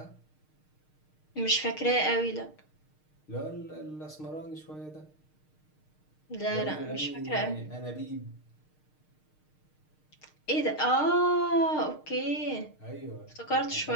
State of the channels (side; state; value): right; late; 6.5 ms